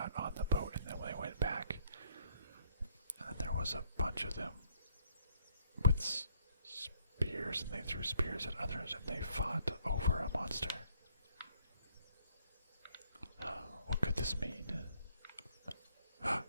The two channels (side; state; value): both; inverted; correlation -0.66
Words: on the boat, and then they went back. And there was a bunch of them with spears, and they threw spears at others, and they fought over a monster. What could this mean?